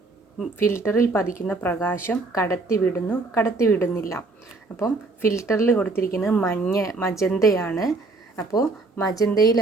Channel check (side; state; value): left; quieter; 3.5 dB